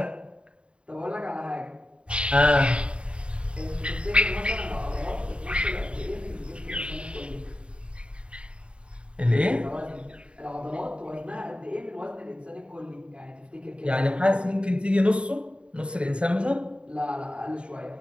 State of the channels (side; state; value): left; late; 0.056 ms